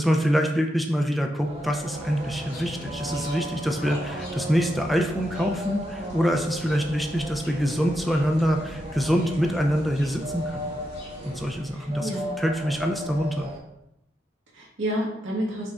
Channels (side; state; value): both; normal; correlation 0.85